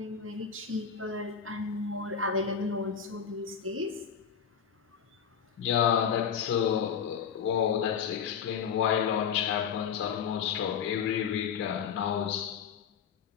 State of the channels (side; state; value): right; quieter; 7.4 dB